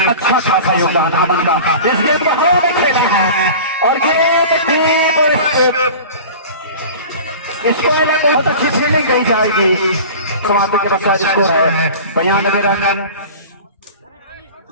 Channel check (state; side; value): inverted; both; correlation -0.37